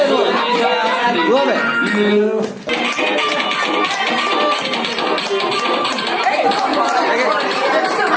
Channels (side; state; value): both; identical; correlation 1.00